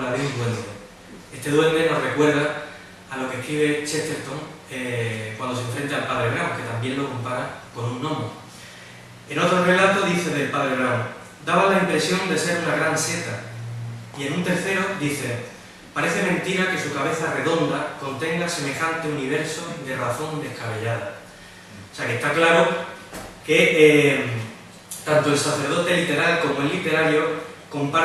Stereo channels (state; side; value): identical; both; correlation 1.00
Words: de un duende. Este duende nos recuerda a lo que escribe Chesterton cuando se enfrenta al padre Brown, que también lo compara con un gnomo. En otro relato dice del padre Brown: daba la impresión de ser una gran seta. Y en un tercero dice: parece mentira que su cabeza redonda contenga semejante universo de razón descabellada. O sea que está claro que tanto el sacerdote literal como el literario